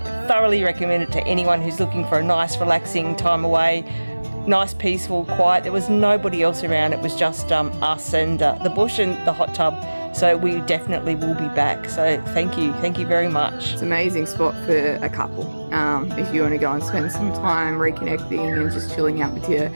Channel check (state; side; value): inverted; both; correlation -1.00